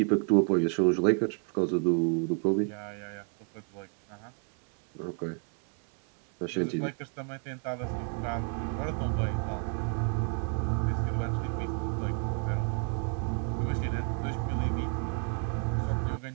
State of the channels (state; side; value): quieter; left; 37.3 dB